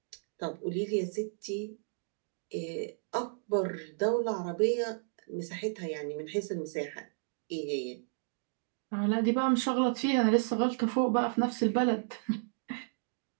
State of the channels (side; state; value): left; silent; digital silence